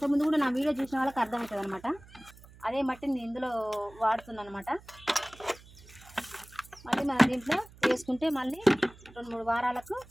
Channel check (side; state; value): right; noise; hum, 22 dB below the sound